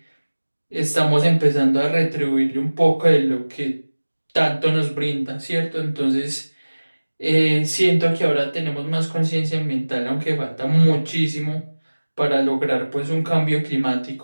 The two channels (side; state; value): both; inverted; correlation -1.00